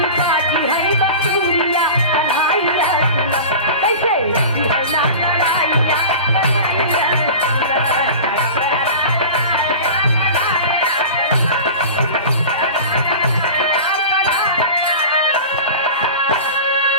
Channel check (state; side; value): inverted; both; correlation -0.34